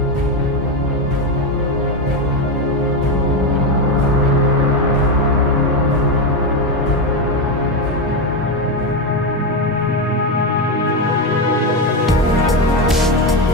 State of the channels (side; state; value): both; normal; correlation 0.10